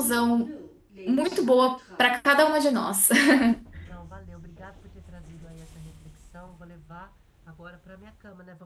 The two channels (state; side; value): identical; both; correlation 1.00